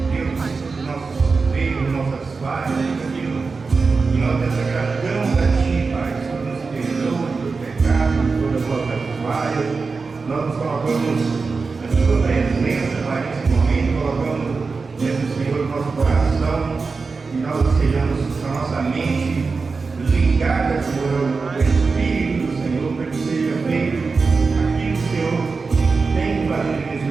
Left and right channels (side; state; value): left; quieter; 4.5 dB